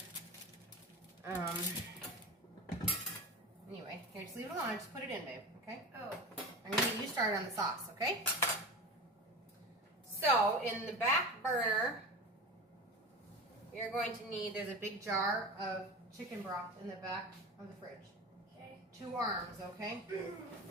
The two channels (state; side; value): normal; both; correlation 0.30